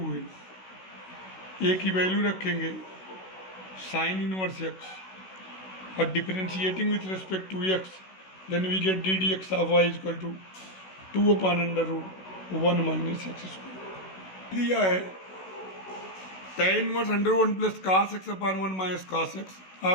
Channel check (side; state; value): right; late; 16 ms